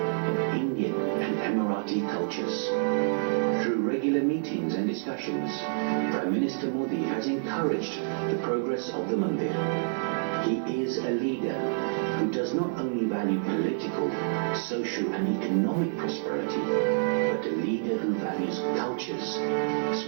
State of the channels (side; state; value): left; silent; 59 dB below the other